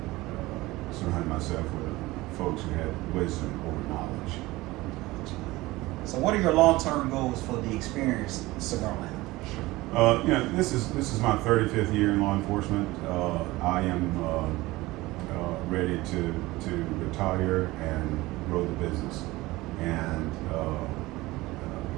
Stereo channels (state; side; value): quieter; left; 19.6 dB